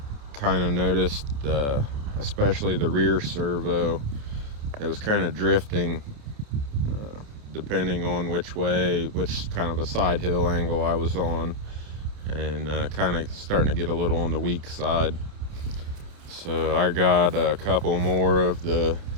kind of noticed, especially the rear servo, it was kind of drifting depending on which kind of a side hill angle I was on, and kind of starting to get a little on the weak side. So I got a couple more of the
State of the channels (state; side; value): late; left; 28 ms